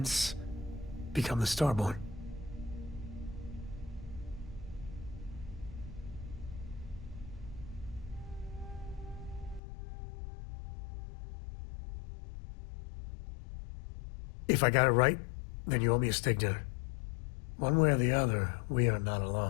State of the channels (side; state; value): right; drops out; at 9.6 s